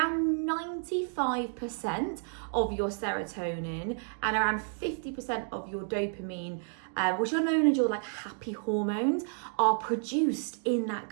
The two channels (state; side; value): silent; left; 57 dB below the other